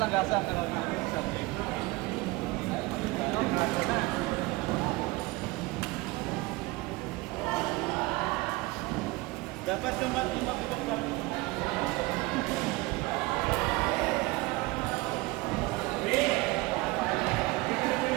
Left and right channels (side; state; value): left; quieter; 22.2 dB